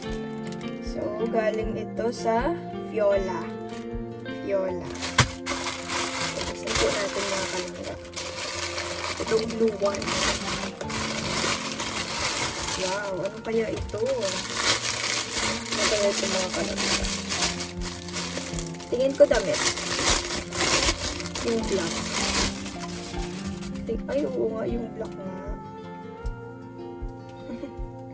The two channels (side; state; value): both; identical; correlation 1.00